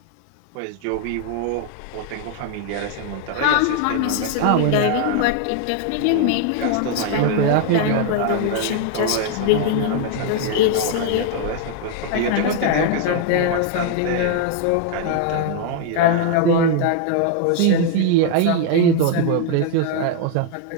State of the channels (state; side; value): different; both; correlation 0.00